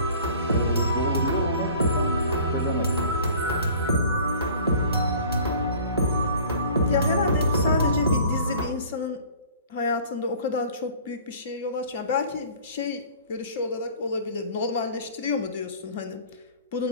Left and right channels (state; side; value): inverted; both; correlation -0.47